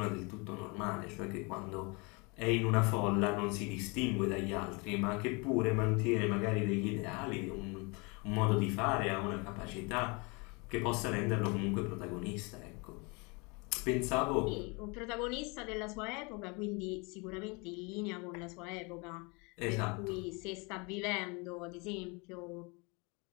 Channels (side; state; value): right; quieter; 29.7 dB